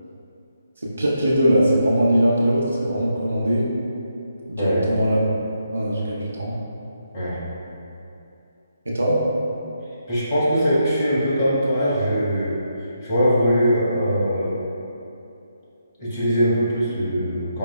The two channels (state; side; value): inverted; both; correlation -0.81